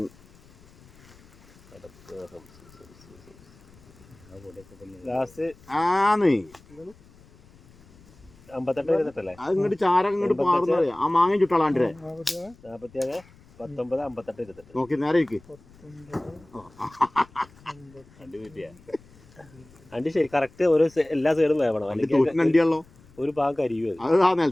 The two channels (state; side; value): noise; left; rumble, 26 dB below the sound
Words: അങ്ങോട്ട് ചാര അങ്ങോട്ട് പാറുന്ന ആ മാങ്ങ ചുട്ടാളാണ്ട് 47 19 58 28 നോക്കി നേരെ ഇരിക്ക്. അണ്ടി ശരി കറക്റ്റ് ഓരോ എല്ലാ സൈഡും വേവണം, അല്ലെങ്കിൽ അണ്ടിയാണല്ലോ ഒരു ഭാഗം കരിയോ. അത് ആ